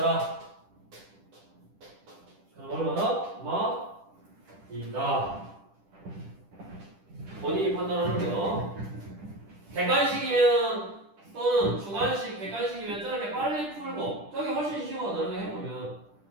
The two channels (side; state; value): left; late; 10 ms